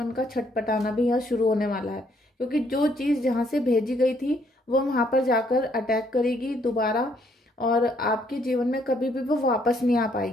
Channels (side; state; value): both; normal; correlation 0.69